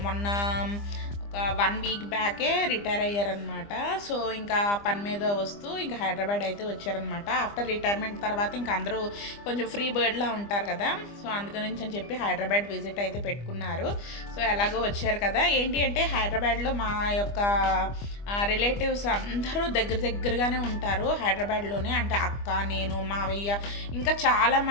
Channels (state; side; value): late; right; 25 ms